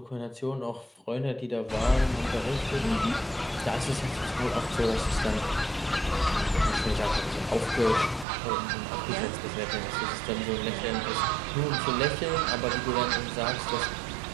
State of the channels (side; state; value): left; drops out; at 8.2 s